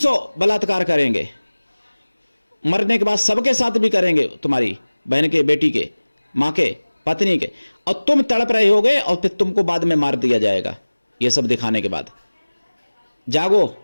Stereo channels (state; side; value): inverted; both; correlation -1.00